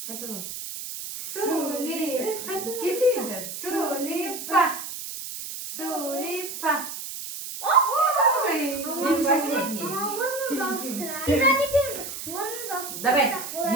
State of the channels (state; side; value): noise; right; hiss, 8 dB below the sound